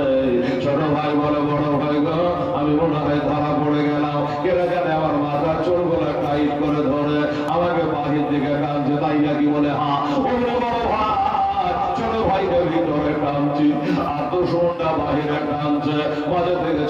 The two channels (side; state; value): both; identical; correlation 1.00